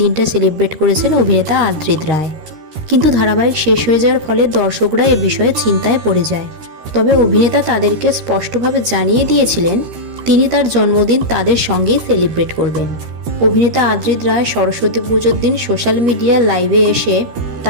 দিনটা সেলিব্রেট করেছেন অভিনেতা আদ্রিত রায়। কিন্তু ধারাবাহিক শেষ হয়ে যাওয়ার ফলে দর্শকরা এ বিষয়ে চিন্তায় পড়ে যায়। তবে অভিনেতা তাদেরকে স্পষ্টভাবে জানিয়ে দিয়েছিলেন তিনি তার জন্মদিন তাদের সঙ্গেই সেলিব্রেট করবেন। অভিনেতা আদ্রিত রায় সরস্বতী পুজোর দিন সোশ্যাল মিডিয়া লাইভে এসে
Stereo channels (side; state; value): left; late; 13 ms